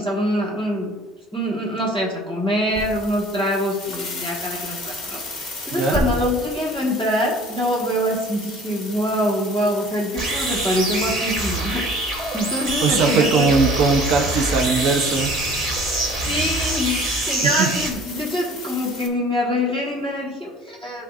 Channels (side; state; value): both; normal; correlation 0.49